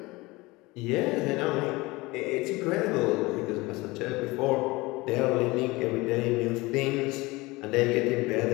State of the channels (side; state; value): right; quieter; 22.2 dB